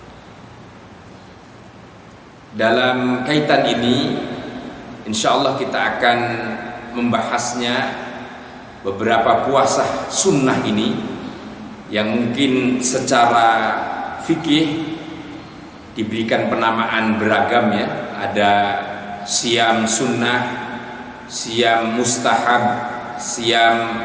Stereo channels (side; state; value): both; identical; correlation 1.00